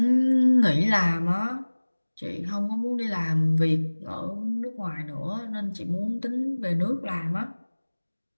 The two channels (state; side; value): inverted; both; correlation -1.00